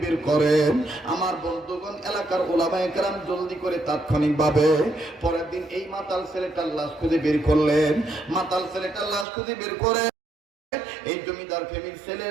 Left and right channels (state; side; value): drops out; left; at 9.2 s